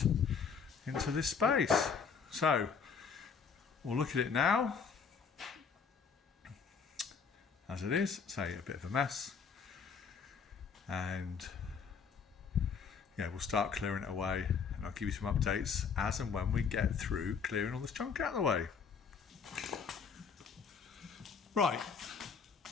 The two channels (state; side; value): quieter; right; 6.0 dB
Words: into this space. So we'll look at it now as it is. Say a bit of a mess, and yeah, we'll start clearing it away, and I'll give you some updates as and when we get through clearing all this junk out of the way. Right,